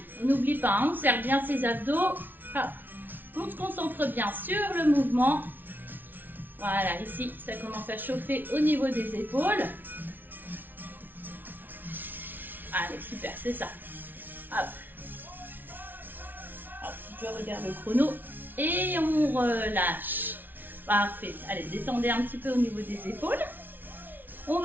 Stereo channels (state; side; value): late; left; 0.089 ms